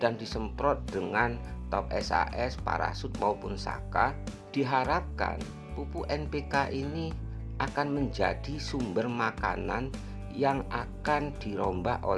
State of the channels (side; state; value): both; identical; correlation 1.00